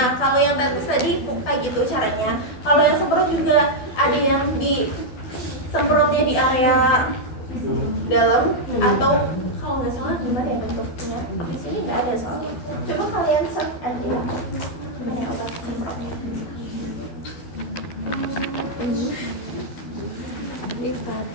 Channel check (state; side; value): late; right; 12 ms